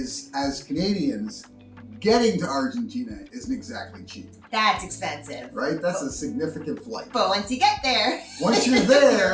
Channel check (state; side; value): identical; both; correlation 1.00